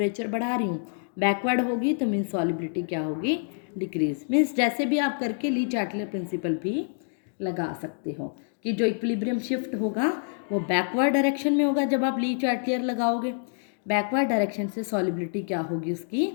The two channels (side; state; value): right; silent; digital silence